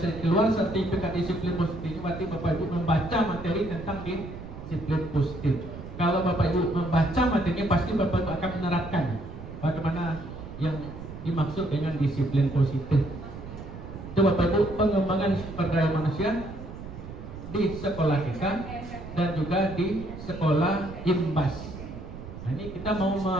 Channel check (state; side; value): noise; right; rumble, 12 dB below the sound